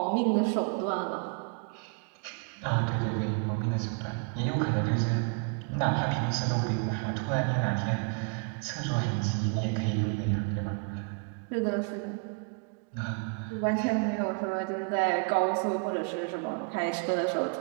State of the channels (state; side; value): quieter; left; 36.2 dB